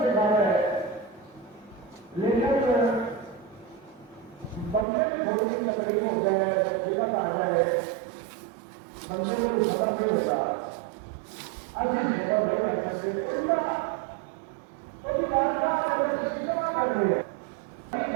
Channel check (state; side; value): drops out; left; at 4.9 s